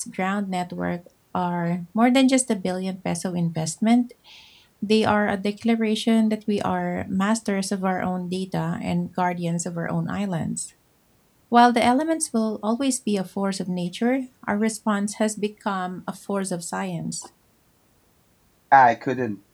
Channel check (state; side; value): identical; both; correlation 1.00